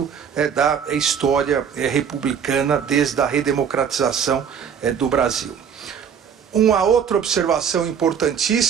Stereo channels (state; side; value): quieter; left; 7.5 dB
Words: da história republicana desde a redemocratização do Brasil. Uma outra observação